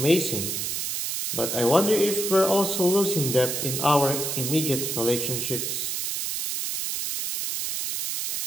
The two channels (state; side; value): noise; right; hiss, 2 dB below the sound